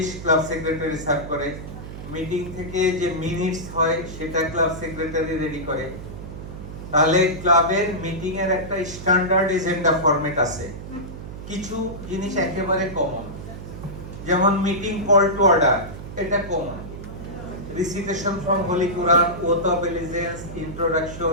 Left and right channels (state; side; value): noise; right; hum, 11 dB below the sound